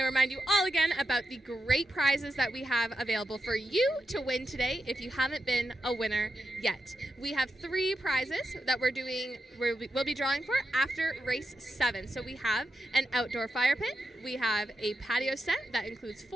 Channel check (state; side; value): normal; both; correlation 0.87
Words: remind you all again about the great prizes that we have available for you to win today if you haven't been a winner yet. We have 3 prizes that we'll be drawing for after race 7. So we have an outdoor fire pit, we have a patio set that includes